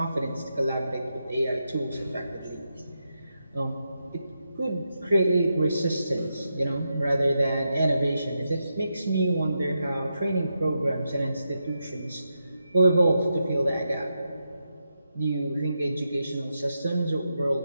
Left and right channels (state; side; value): inverted; both; correlation -0.86